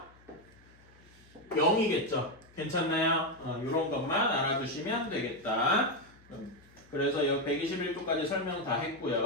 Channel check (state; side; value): noise; left; hum, 27 dB below the sound